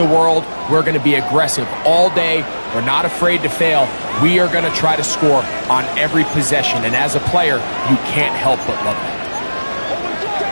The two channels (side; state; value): both; inverted; correlation -1.00